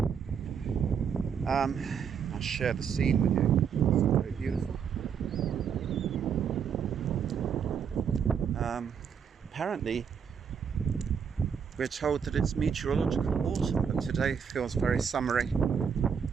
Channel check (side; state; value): left; quieter; 7.2 dB